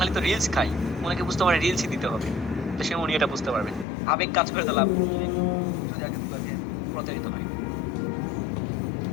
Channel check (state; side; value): drops out; right; at 3.9 s